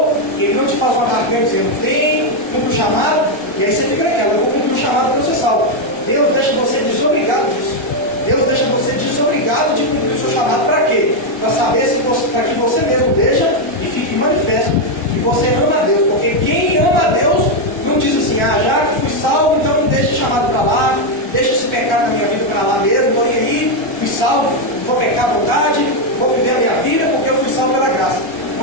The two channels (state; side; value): noise; right; rumble, 26 dB below the sound